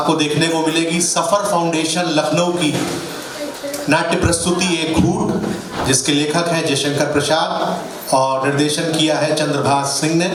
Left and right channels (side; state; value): both; identical; correlation 1.00